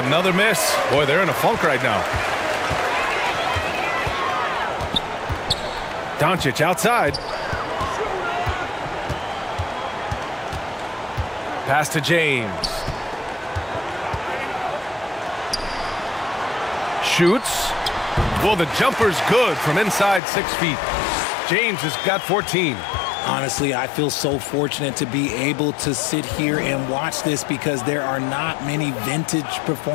miss. Boy, they're in a funk right now. Doncic outside. Pass to James. Shoots. Well, the jumper's good from inside 6 feet. James has got 14. Honestly, I feel so fortunate to be able to sit here and watch this because there are not many vintage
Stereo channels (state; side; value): drops out; right; at 20.2 s